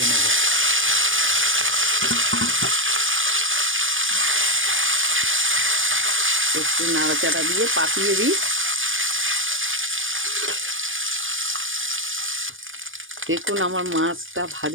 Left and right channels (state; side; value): late; left; 0.57 ms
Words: নেব। একটু নাড়াচাড়া দিয়ে পাতিয়ে দিই। দেখুন আমার মাছটা